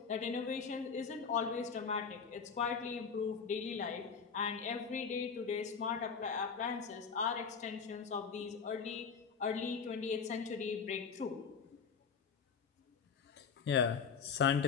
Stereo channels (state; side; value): quieter; right; 6.0 dB